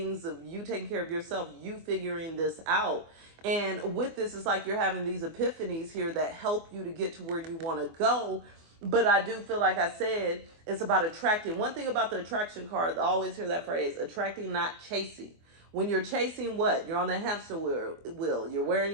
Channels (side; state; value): left; late; 24 ms